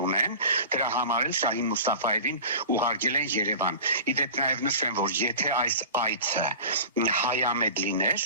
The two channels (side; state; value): both; inverted; correlation -0.37